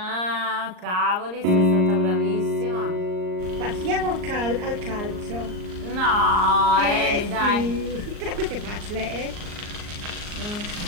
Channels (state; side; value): late; left; 39 ms